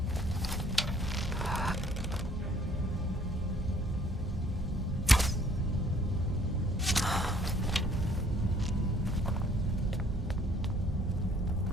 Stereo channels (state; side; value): normal; both; correlation 0.60